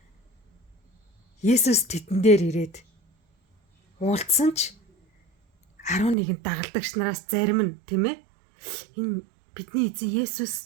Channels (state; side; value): drops out; left; at 6.2 s